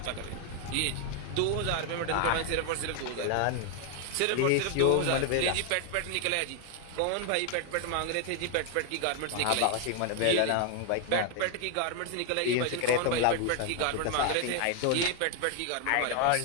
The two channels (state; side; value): different; both; correlation 0.00